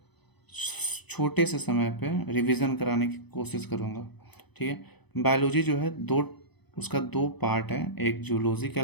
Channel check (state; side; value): late; right; 0.99 ms